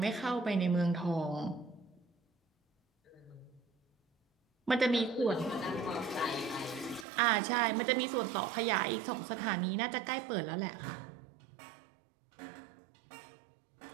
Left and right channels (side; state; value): left; drops out; at 7.1 s